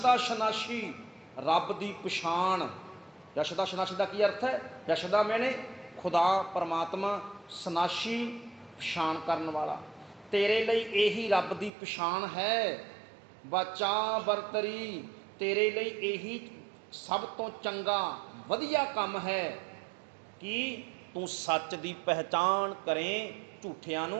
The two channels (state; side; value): drops out; left; at 11.7 s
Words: ਸ਼ਨਾਸ਼ੀ, ਰੱਬ ਦੀ ਪਛਾਣ। ਯਸ਼ਦਾ ਸ਼ਨਾਸ਼ੀ ਦਾ ਕੀ ਅਰਥ ਹੈ? ਯਸ਼ਦਾ ਮੈਨੇ ਖੁਦਾ ਪਰਮਾਤਮਾ, ਸ਼ਨਾਸ਼ੀ ਪਛਾਣ ਕਰਨ ਵਾਲਾ। ਤੇਰੇ ਲਈ ਇਹੀ ਰੱਬ ਦੀ ਪਛਾਣ ਹੈ। ਬਚਾ ਬਰਤਰੀ, ਤੇਰੇ ਲਈ ਇਹੀ ਸਭ ਤੋਂ ਚੰਗਾ ਵਧੀਆ ਕੰਮ ਹੈ ਕਿ ਤੂੰ ਸੱਚ ਦੀ ਪਹਿਚਾਣ ਕਰੇ, ਝੂਠਿਆਂ